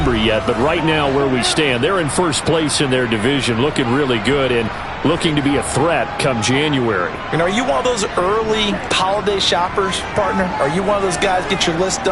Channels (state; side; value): identical; both; correlation 1.00